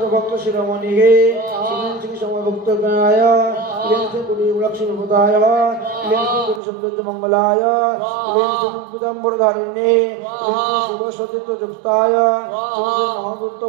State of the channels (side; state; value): left; drops out; at 6.6 s